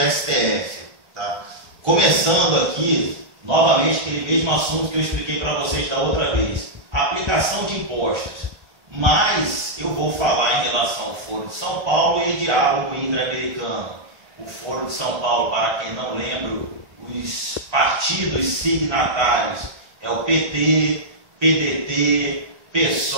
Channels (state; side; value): late; left; 1.5 ms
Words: Tá? Começando aqui, novamente, aquele mesmo assunto que eu expliquei para vocês da outra vez. Aplicação de impostos. Mas eu vou falar em relação ao Foro de São Paulo e diálogo interamericano. O Foro de São Paulo, para quem não lembra, os partidos signatários é o PT, PDT,